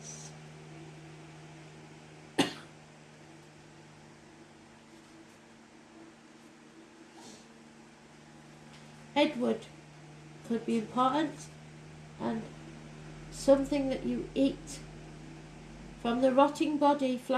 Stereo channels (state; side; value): identical; both; correlation 1.00